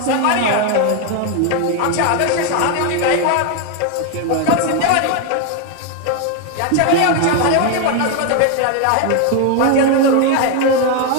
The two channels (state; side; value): different; both; correlation 0.01